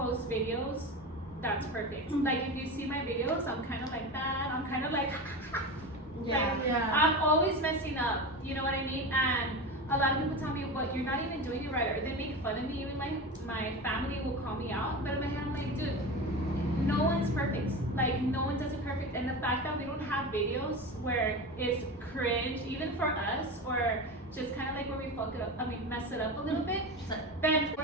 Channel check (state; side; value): normal; both; correlation 0.25